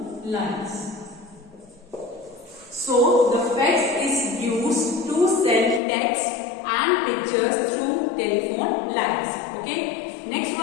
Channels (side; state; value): right; drops out; at 5.8 s